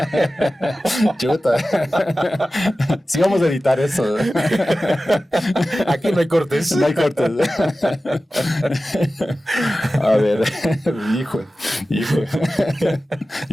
Chuta. Sí, vamos a editar eso. Aquí no hay cortes. No hay cortes. A ver, hijo.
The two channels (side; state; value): both; normal; correlation 0.95